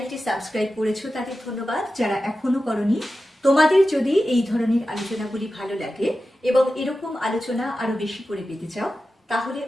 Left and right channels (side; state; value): both; normal; correlation 0.93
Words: সাবস্ক্রাইব করেছো তাদের ধন্যবাদ। যারা এখনো করনি, তোমাদের যদি এই ধরনের আলোচনাগুলি ভালো লাগে এবং এরকম আলোচনা আরো বেশি করে পেতে চাও, তাহলে